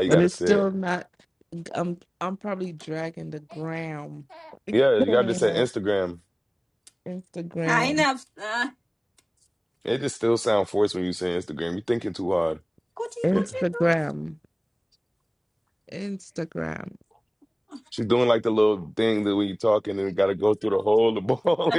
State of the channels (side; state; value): both; identical; correlation 1.00